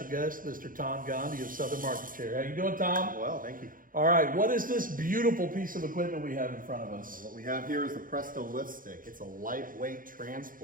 guest, Mr. Tom Gandhi of Southern Market Chair. How you doing, Tom? Well, thank you. All right, what is this beautiful piece of equipment we have in front of us? What we have here is the Presto LiftStik. It's a lightweight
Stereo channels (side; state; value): left; late; 0.40 ms